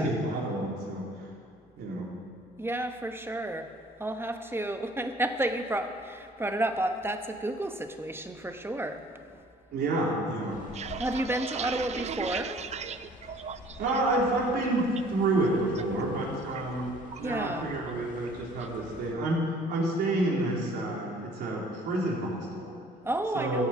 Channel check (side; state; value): both; normal; correlation 0.54